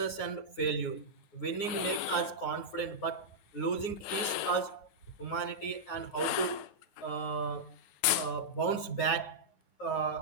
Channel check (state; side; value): late; right; 9.5 ms